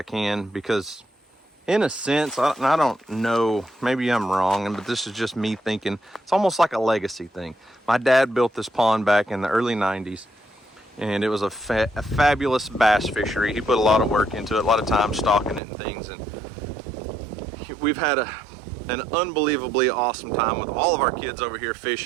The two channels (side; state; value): left; drops out; at 15.6 s